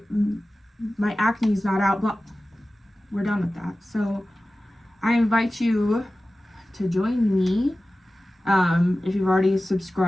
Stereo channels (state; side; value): normal; both; correlation 0.96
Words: acne's not out. Blah. We're done with that. So I invite you to join me. If you've already